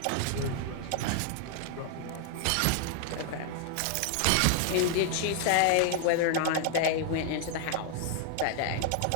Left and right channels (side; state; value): both; different; correlation 0.00